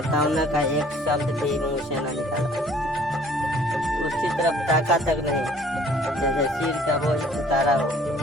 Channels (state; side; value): normal; both; correlation 0.56